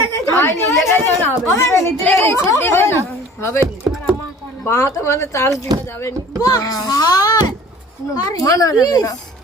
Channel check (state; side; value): normal; both; correlation 0.47